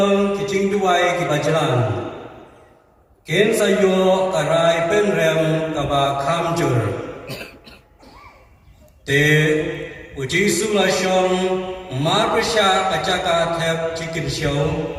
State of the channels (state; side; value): identical; both; correlation 1.00